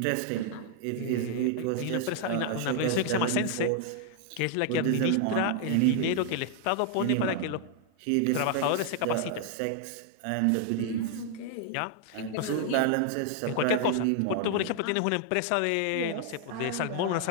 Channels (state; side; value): different; both; correlation 0.00